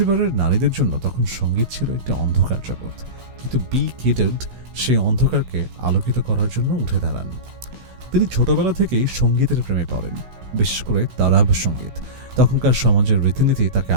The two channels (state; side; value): late; left; 16 ms